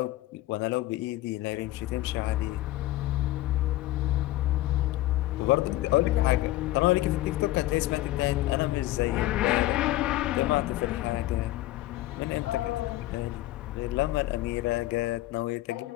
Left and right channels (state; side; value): quieter; right; 16.3 dB